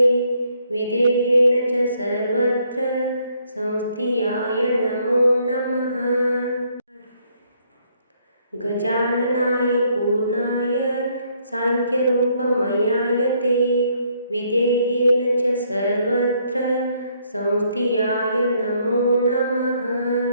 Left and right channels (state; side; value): inverted; both; correlation -0.69